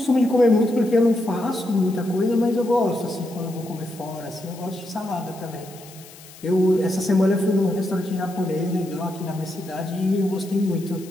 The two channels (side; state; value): left; noise; hiss, 20 dB below the sound